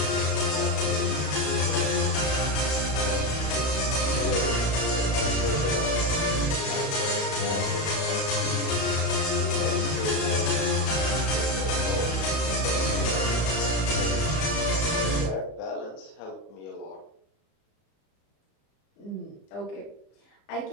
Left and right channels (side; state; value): right; late; 35 ms